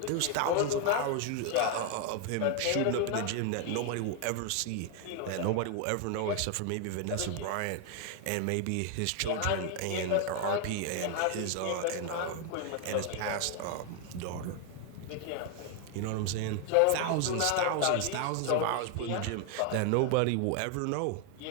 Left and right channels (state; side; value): different; both; correlation 0.01